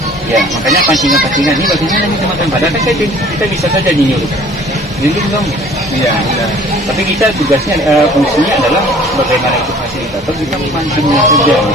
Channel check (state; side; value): normal; both; correlation 0.51